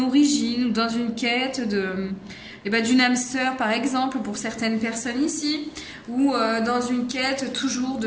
ou dans une quête d'une âme sœur par exemple pour certaines personnes ici, ou dans une quête toujours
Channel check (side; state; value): both; identical; correlation 1.00